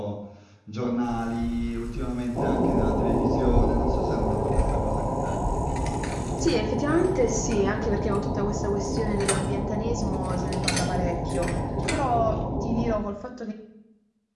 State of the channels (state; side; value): identical; both; correlation 1.00